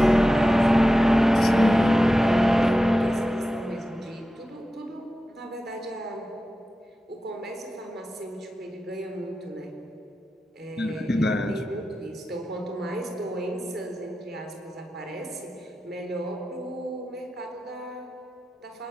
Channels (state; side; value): normal; both; correlation 0.93